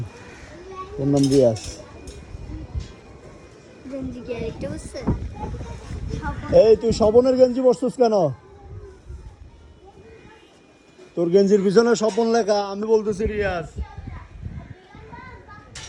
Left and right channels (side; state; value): both; identical; correlation 1.00